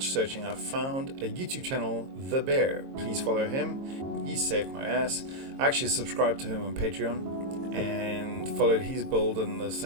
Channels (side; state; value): left; late; 22 ms